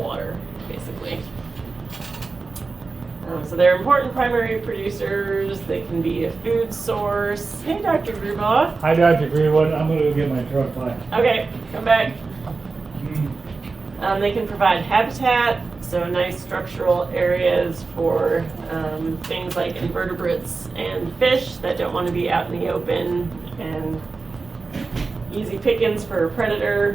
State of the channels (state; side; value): quieter; left; 4.1 dB